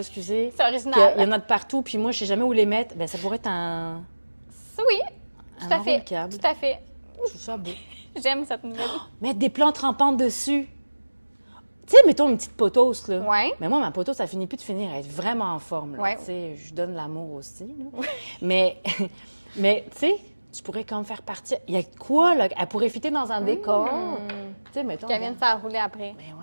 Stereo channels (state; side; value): inverted; both; correlation -1.00